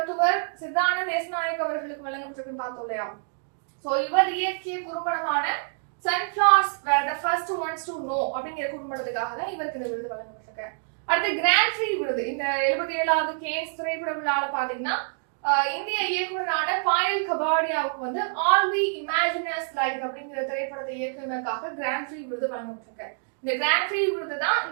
சித்தானந்த தேசநாயக் அவர்களுக்கு வழங்கப்பட்டிருக்குன்னு பார்த்தோம் இல்லையா. சோ இவர் இயக்கிய குறும்படமான Sunflowers were the first ones to know அப்படிங்கிற குறும்படத்துக்காக தான் இவருக்கு இந்த விருது வழங்கப்பட்டிருக்கு. அடுத்து கிராண்ட் ப்ரீ விருது இந்த 77வது கேன்ஸ் திரைப்பட விழால பாத்தீங்கன்னா இந்திய இயக்குனரான பாயல் கபாடியாவுக்கு வந்து ஆல் வி இமேஜினஸ் லைக் அப்படிங்கிற திரைப்படத்தை இயக்குனருக்காக கிராண்ட் ப்ரீ விருது வழங்கப்பட்டிருக்கு. இந்த கிராண்ட் ப்ரீ விருது தான்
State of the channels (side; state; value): left; silent; digital silence